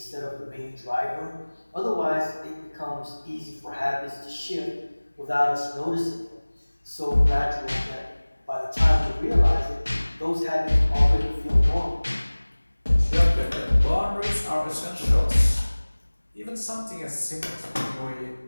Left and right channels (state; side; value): inverted; both; correlation -1.00